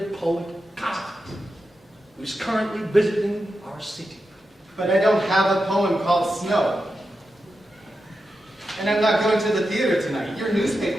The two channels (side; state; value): both; normal; correlation 0.89